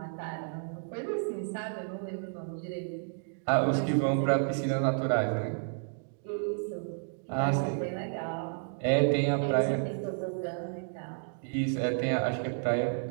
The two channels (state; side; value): silent; left; digital silence